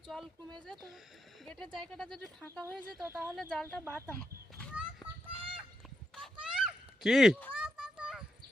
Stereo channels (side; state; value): both; normal; correlation 0.83